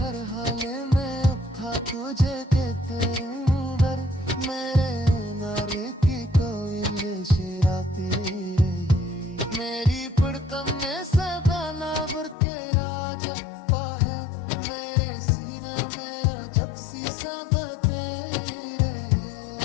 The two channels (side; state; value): right; drops out; at 12.4 s